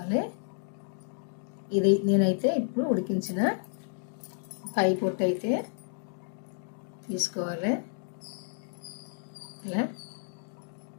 ఇది నేనైతే ఇప్పుడు ఉడికించిన పై పొట్టు అయితే తీసుకోవాలి. ఇలా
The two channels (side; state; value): right; silent; digital silence